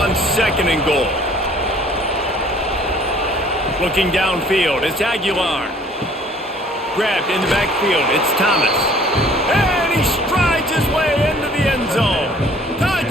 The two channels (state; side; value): normal; both; correlation 0.55